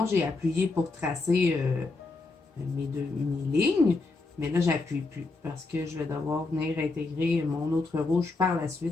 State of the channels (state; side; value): quieter; right; 3.6 dB